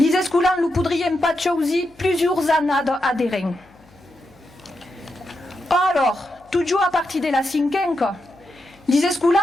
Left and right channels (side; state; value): left; noise; hum, 29 dB below the sound